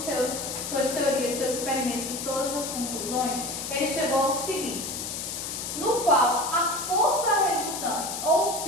suas teorias, seus experimentos e todas as conclusões, ele chegou ao seguinte, no qual a força resultante, ou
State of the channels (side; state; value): left; noise; hiss, 5 dB below the sound